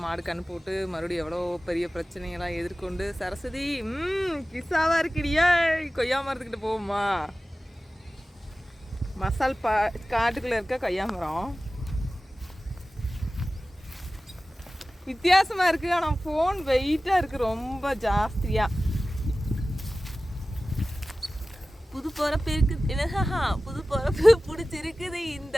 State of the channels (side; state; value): both; normal; correlation 0.96